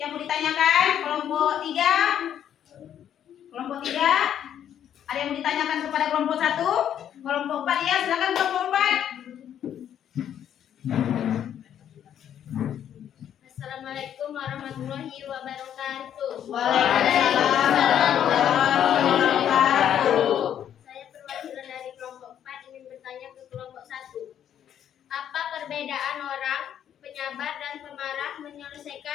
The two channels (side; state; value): right; quieter; 9.9 dB